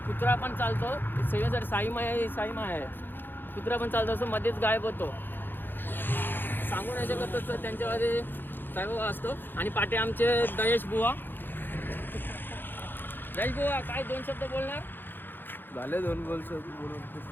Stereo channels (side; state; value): right; late; 0.096 ms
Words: कुत्रा पण चालतो. सेवेसाठी साई माय आहे. कुत्रा पण चालतो. असं मध्येच गायब होतो. सांगू नाही शकत तसं त्यांच्यामध्ये साईबाबा असतो. आणि पाठी आमचे दयेश बुवा. काय 2 शब्द बोलणार? झाले 2 वर्ष बोलून.